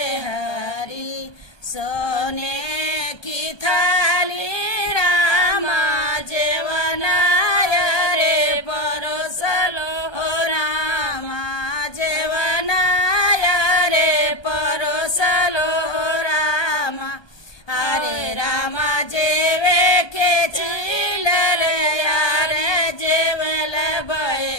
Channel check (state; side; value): late; right; 1.2 ms